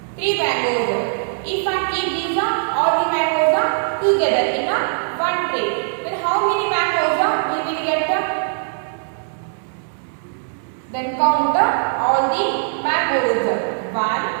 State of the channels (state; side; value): silent; left; 65 dB below the other